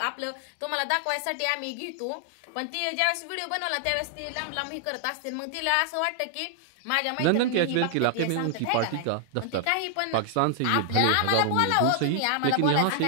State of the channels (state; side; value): different; both; correlation 0.00